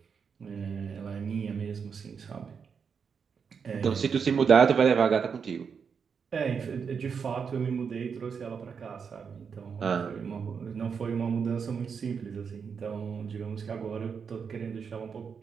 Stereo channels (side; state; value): left; quieter; 6.3 dB